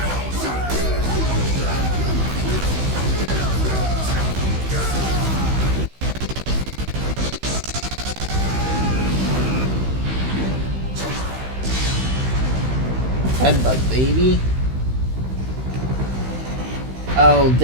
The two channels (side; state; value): left; late; 16 ms